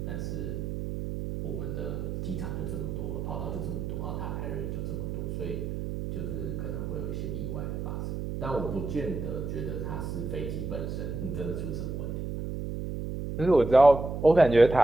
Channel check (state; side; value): noise; right; hum, 4 dB below the sound